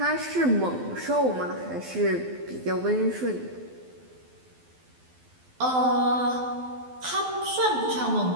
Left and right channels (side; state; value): left; late; 12 ms